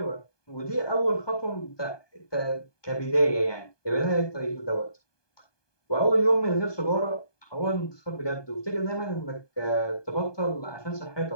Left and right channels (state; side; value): late; right; 1.2 ms